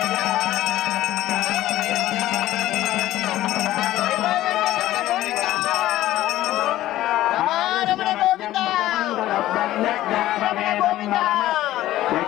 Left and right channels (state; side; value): quieter; right; 14.7 dB